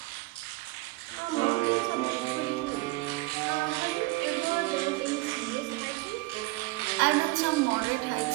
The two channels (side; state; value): left; quieter; 21.7 dB